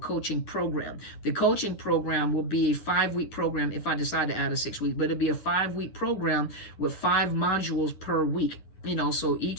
program. The coaching program will be a 5-week program if I decide to add a 6-week, but it'll be a 5-week program with 5 modules per week. So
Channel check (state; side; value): late; right; 10 ms